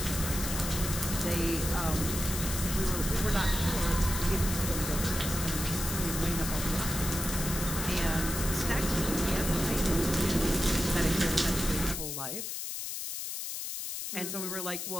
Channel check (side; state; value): left; noise; hiss, 5 dB below the sound